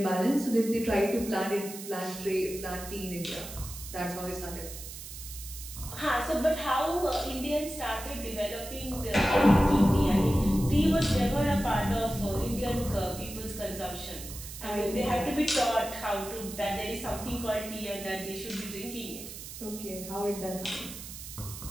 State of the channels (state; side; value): noise; right; hiss, 11 dB below the sound